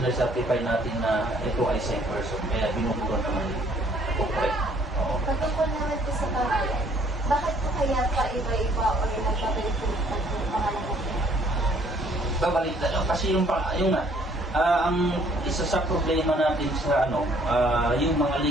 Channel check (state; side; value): normal; both; correlation 0.61